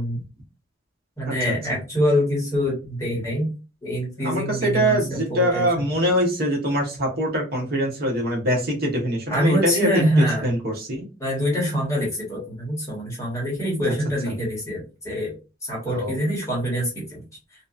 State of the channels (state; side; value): normal; both; correlation 0.45